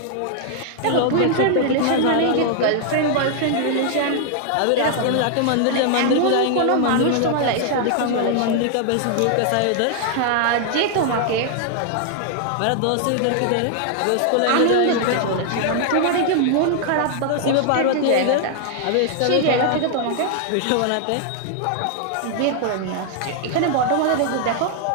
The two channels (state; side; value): different; both; correlation 0.00